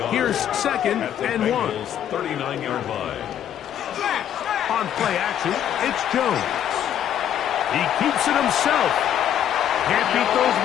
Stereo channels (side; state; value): right; quieter; 10.2 dB